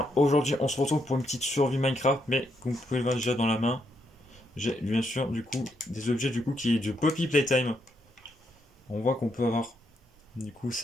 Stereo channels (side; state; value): both; normal; correlation 0.78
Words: Aujourd'hui, on se retrouve pour une petite survie Minecraft, mais comme vous pouvez le voir déjà dans la main, j'ai bien sûr du coup des objets du coup qui est du Poppy Playtime. On voit qu'on peut avoir du coup